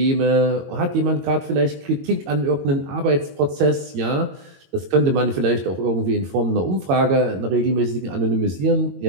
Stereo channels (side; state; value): left; late; 22 ms